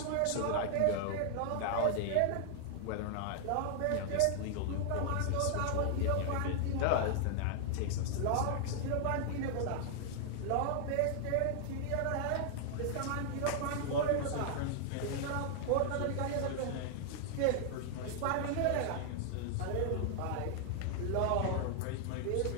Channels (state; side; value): different; both; correlation 0.00